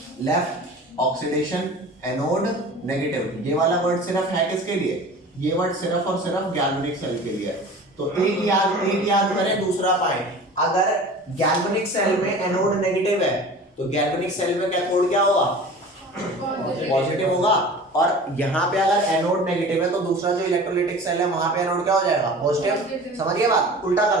Left oxidation, anode, negative. ये वाला वर्ड सिर्फ है किसके लिए? ये वर्ड सिर्फ और सिर्फ गैल्वेनिक सेल के लिए। तो एक याद करें, दूसरा पॉइंट, अगर गैल्वेनिक सेल में एनोड नेगेटिव है तो गैल्वेनिक सेल में कैथोड क्या होगा? पॉजिटिव होगा। और यहाँ पे अगर एनोड नेगेटिव है तो दूसरा जो इलेक्ट्रोलाइटिक सेल है वहां पे एनोड क्या हो जाएगा? पॉजिटिव। समझिए बात, उल्टा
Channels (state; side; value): normal; both; correlation 0.39